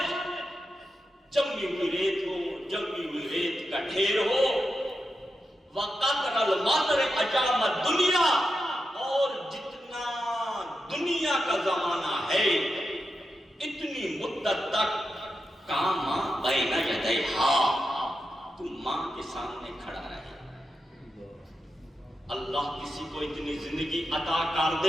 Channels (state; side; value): normal; both; correlation 0.88